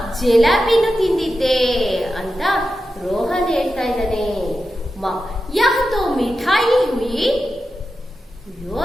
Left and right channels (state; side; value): normal; both; correlation 0.90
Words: ಜಿಲೇಬಿನೂ ತಿಂದಿದ್ದೆ ಅಂತ ರೋಹನ್ ಹೇಳ್ತಾ ಇದ್ದಾನೆ. ಮಾ ಯಹ ತೋ ಮಿಠಾಯಿ ಹುಯಿ. ಅಯ್ಯೋ,